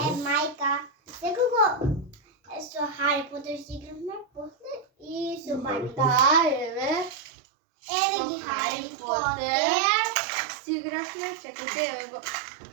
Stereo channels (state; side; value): drops out; left; at 7.2 s